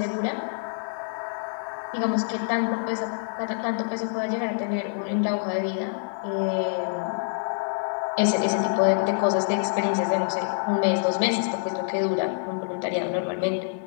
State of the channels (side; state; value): right; silent; digital silence